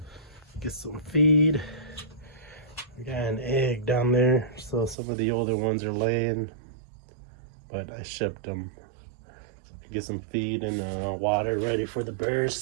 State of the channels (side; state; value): left; drops out; at 5.0 s